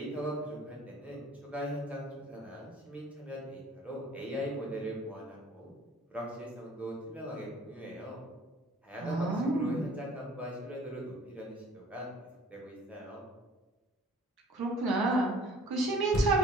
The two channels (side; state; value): both; normal; correlation 0.52